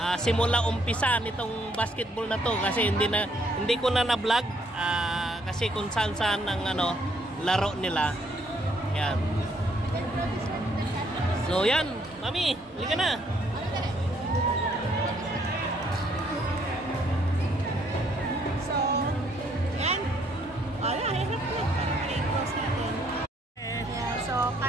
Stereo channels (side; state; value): both; normal; correlation 0.68